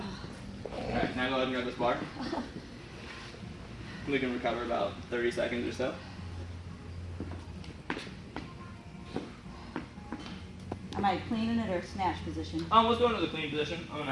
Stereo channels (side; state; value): both; identical; correlation 1.00